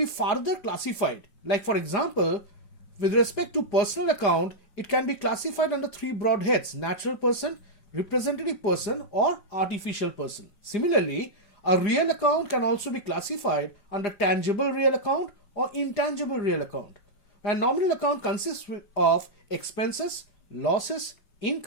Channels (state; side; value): late; right; 4.9 ms